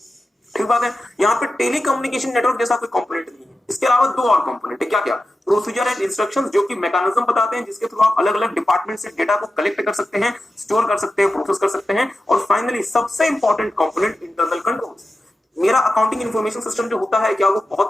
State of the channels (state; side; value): normal; both; correlation 0.92